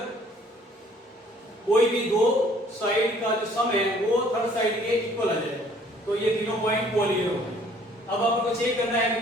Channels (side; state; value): both; normal; correlation 0.58